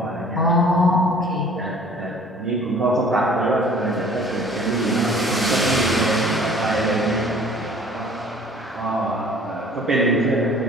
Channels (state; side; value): normal; both; correlation 0.51